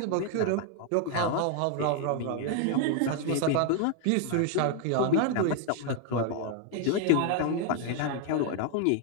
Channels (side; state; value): both; different; correlation 0.00